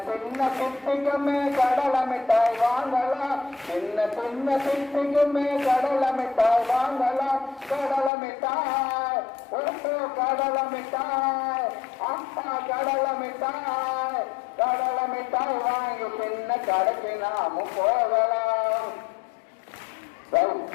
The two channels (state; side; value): drops out; right; at 8.1 s